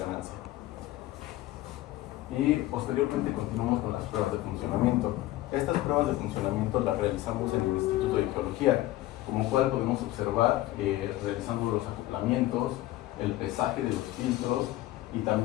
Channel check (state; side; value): quieter; right; 16.3 dB